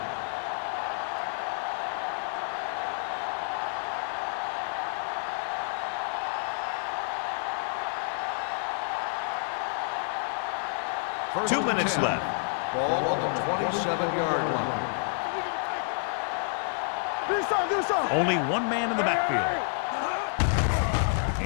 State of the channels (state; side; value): silent; right; 59 dB below the other